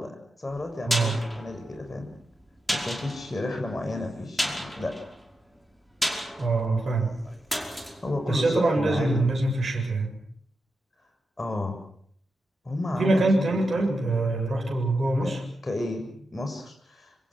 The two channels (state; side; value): normal; both; correlation 0.88